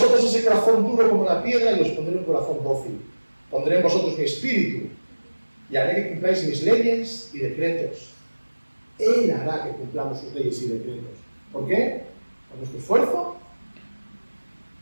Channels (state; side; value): inverted; both; correlation -1.00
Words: ese corazón duro como la piedra y os pondré un corazón dócil. Pondré en vosotros mi espíritu y haré que cumpláis mis leyes y decretos. Él hará que cumplamos sus leyes y decretos. ¿Por qué? Con nuestro esfuerzo,